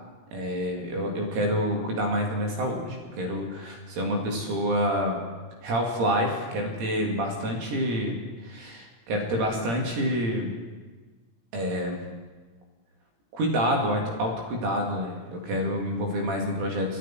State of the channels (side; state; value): left; late; 17 ms